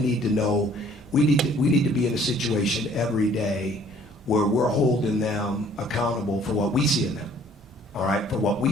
know we need to be in a situation every day where we're holding them accountable for what we see in them. All right, for what we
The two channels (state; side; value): normal; both; correlation 0.57